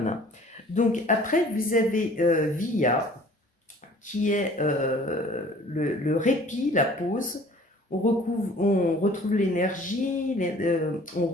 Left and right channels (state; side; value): normal; both; correlation 0.51